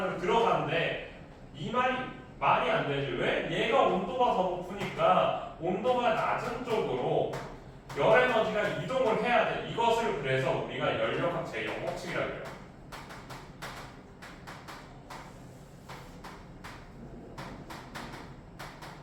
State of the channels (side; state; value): both; identical; correlation 1.00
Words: 들어가는데 이 말이 안 되지. 왜? 얘가 온도가 더 높으니까 온도가 낮은 쪽으로 열 에너지가 이동을 해야 돼. 이것을 그래서 우리가 연력학 제0법칙이라고 해요.